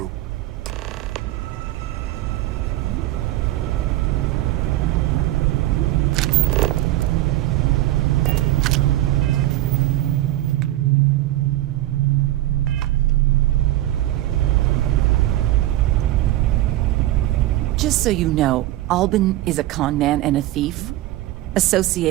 Just so you know, Albin is a con man and a thief.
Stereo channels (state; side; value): quieter; left; 15.4 dB